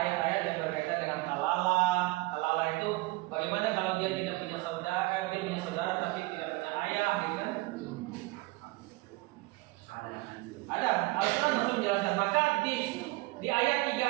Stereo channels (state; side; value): quieter; left; 22.1 dB